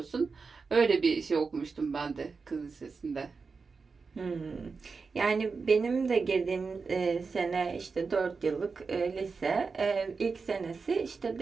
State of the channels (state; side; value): quieter; left; 4.8 dB